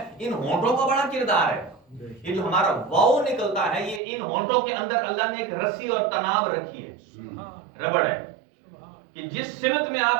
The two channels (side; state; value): left; drops out; at 4.0 s